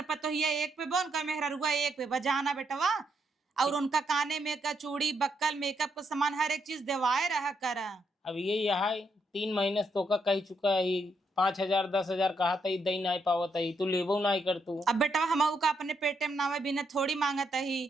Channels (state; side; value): normal; both; correlation 0.77